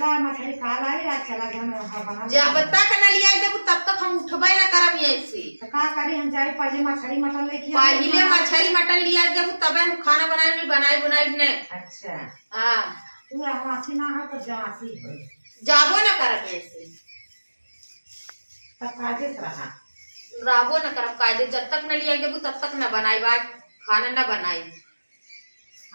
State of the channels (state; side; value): inverted; both; correlation -1.00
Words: मछली खा लाई रात चला बना जब तक न लिया देबू तब तक हम उठबे न करब ऐसे तो का करी हम जाए पहले मछली मटन लेके पहले मछली मटन लिया देबू तबे हम खाना बनाई ने अच्छा हां तू हमासी ना है तो जासी है जाबो न करब ऐसे तब काजे रहा राबो न करब काजे जब तक न लिया देबू तब तक न बनाई बात खाना न बनाई